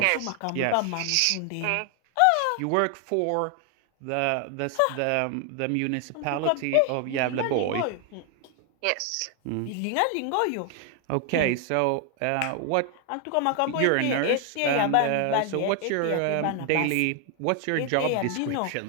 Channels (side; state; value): both; different; correlation 0.00